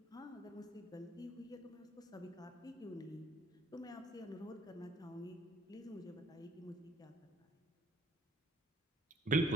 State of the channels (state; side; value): normal; both; correlation 0.61